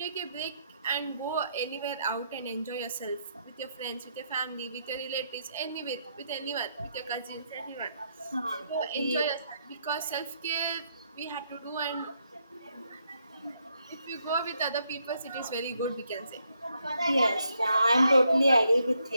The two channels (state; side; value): inverted; both; correlation -0.77